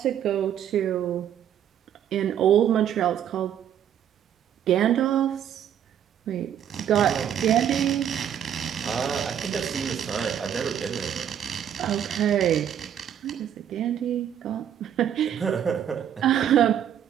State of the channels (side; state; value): left; quieter; 9.6 dB